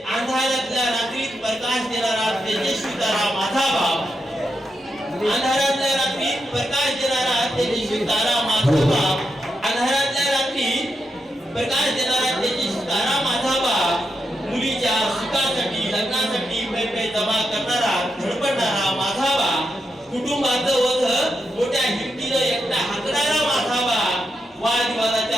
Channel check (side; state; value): both; normal; correlation 0.85